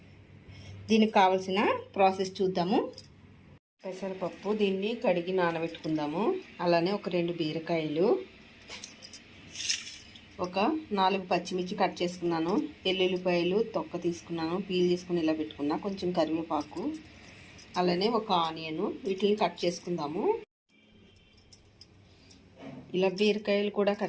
దీనికి కావలసిన ప్రాసెస్ చూద్దాము. పెసరపప్పు దీన్ని కడిగి నానబెట్టుకుందాము. అలానే ఒక 2 బీరకాయలు, ఒక 4 పచ్చిమిర్చి కట్ చేసుకున్నాను, ఎల్లుల్లిపాయలు తొక్క తీసుకున్నాను, పీల్ తీసుకుని ఇలా పెట్టుకున్నా, కొంచెం కరివేపాకు, అలానే ఒక ఆనియన్, వీటిని కట్ చేసుకుందాము. ఇలా బీరకాయలు కూడా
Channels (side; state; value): both; identical; correlation 1.00